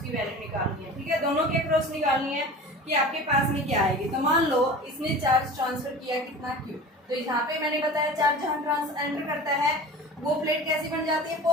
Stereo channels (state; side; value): normal; both; correlation 0.37